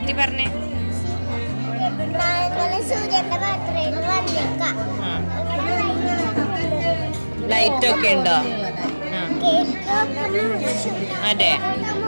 പറഞ്ഞേ. സൂര്യന്റെ ബർത്ത്ഡേയിൽ വന്നേക്കാം. ലൈറ്റ് ഒക്കെ ഉണ്ടോ? അതെ,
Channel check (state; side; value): inverted; both; correlation -1.00